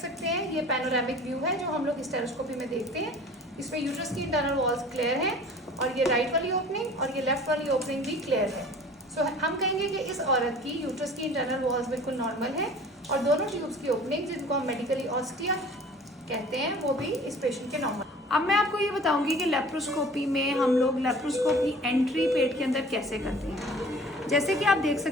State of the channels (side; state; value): both; normal; correlation 0.46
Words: हैं ये पैनोरामिक व्यू है जो हम लोग हिस्टेरोस्कोपी में देखते हैं। इसमें यूट्रस की इंटरनल वॉल्स क्लियर हैं और ये राइट वाली ओपनिंग और ये लेफ्ट वाली ओपनिंग भी क्लियर है। सो हम कहेंगे कि इस औरत की यूट्रस की इंटरनल वॉल्स बिल्कुल नॉर्मल है और दोनों ट्यूब्स की ओपनिंग जिनको हम मेडिकली ऑस्टिया कहते हैं वो भी इस पेशेंट के नॉर्मल। अब मैं आपको ये बताऊंगी कि लेप्रोस्कोपी में हम लोग लेप्रोस्कोप की एंट्री पेट के अंदर कैसे करते हैं। जैसे कि आप देख